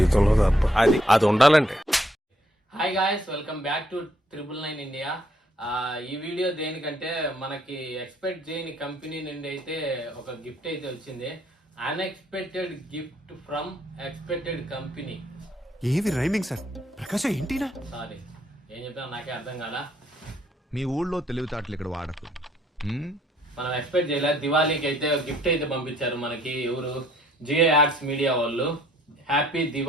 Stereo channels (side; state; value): both; normal; correlation 0.67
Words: తప్ప. అది ఉండాలంటే. Hi guys, welcome back to 999 India. ఈ వీడియో దేనికంటే మనకి ఎక్స్పెక్ట్ చేయని కంపెనీ నుండి అయితే ఒక గిఫ్ట్ అయితే వచ్చింది. Unexpected gift from expected company. ఏవి రైమింగ్ సార్? ప్రకాశ్ ఏంటినా? సారీ, ఏం చెప్పినా నాకే అర్థం కాదా. మీ ఊళ్ళో తెలివితేటలు ఇక్కడ వాడకు. మనం ఎక్స్పెక్ట్ చేయలేదు. దివాళీకి అయితే గిఫ్ట్ అయితే పంపించారు మనకి. ఎవరు? జియో యాడ్స్ మీడియా వాళ్ళు. హ్యాపీ